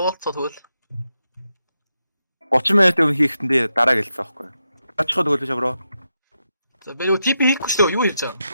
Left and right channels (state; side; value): inverted; both; correlation -0.86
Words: тэгвэл 30 минут өмнө хийхдээ дараа гэлцсэн байхгүй. Очиход өгөөч бро. За би юу тип хийхгүй шүү дээ. Юу хийж байгаа?